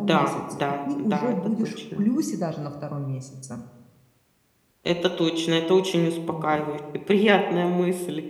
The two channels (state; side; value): identical; both; correlation 1.00